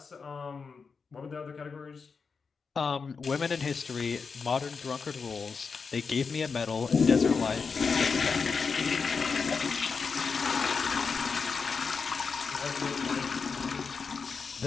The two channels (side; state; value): right; quieter; 5.2 dB